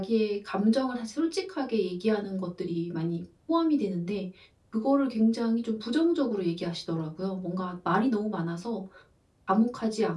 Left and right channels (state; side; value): identical; both; correlation 1.00